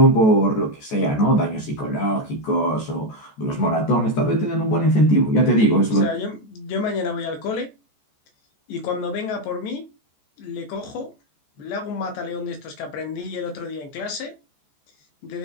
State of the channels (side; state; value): right; late; 14 ms